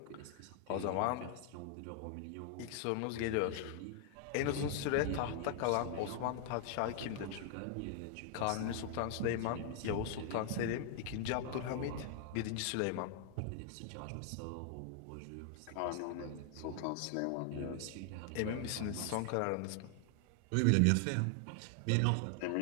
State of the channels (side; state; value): both; different; correlation 0.00